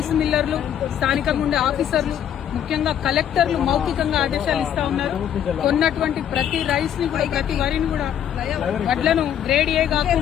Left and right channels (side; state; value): right; quieter; 9.8 dB